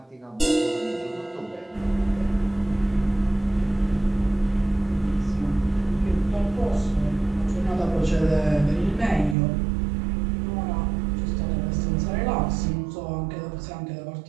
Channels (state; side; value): drops out; left; at 9.3 s